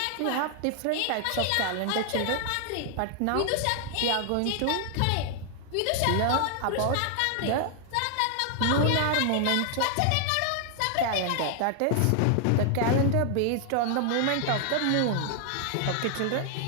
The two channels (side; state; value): both; different; correlation 0.00